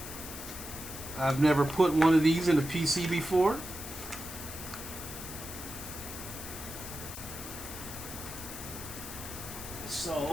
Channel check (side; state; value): left; noise; hiss, 10 dB below the sound